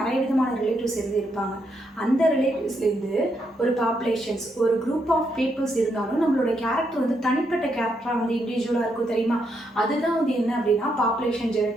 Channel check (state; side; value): normal; both; correlation 0.78